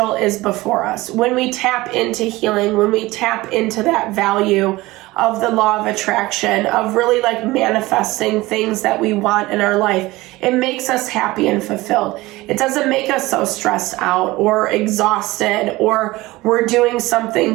is before us. When we tap into healing, when we tap into that value of the law of attraction, of really like manifesting things that we want in our life, it makes us happy and fulfilled. It doesn't make us so stressed out or exhausted, or we're doing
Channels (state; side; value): quieter; left; 19.7 dB